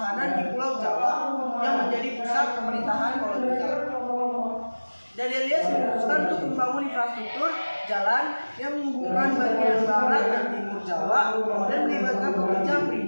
di Pulau Jawa yang menjadi pusat pemerintahan kolonial. Dandeis memutuskan untuk membangun infrastruktur jalan yang menghubungkan bagian barat dan timur Jawa dan melibatkan pekerja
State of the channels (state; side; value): inverted; both; correlation -1.00